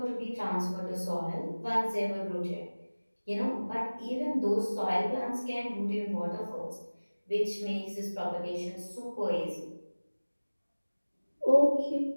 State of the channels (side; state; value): both; inverted; correlation -1.00